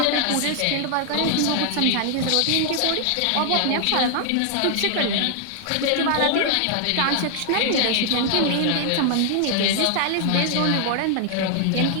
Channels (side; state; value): both; different; correlation 0.00